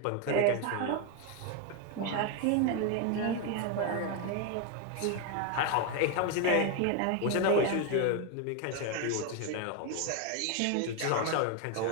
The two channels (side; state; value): both; different; correlation 0.01